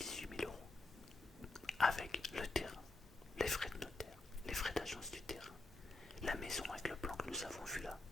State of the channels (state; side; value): quieter; right; 3.1 dB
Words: 000 euros, avec le terrain, les frais de notaire, les frais d'agence du terrain, la maison avec le plan que nous avons vu là,